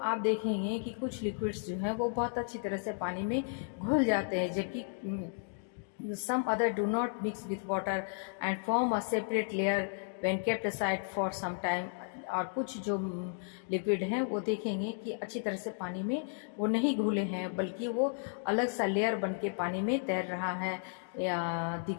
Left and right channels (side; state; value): right; silent; digital silence